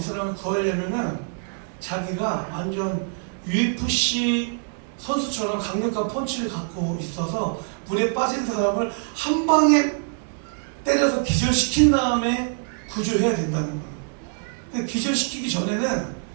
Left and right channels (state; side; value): silent; left; 58 dB below the other